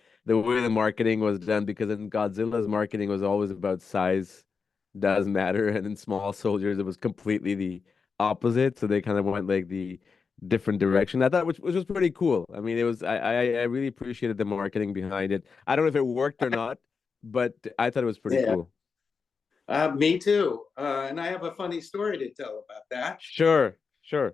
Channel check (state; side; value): quieter; right; 5.3 dB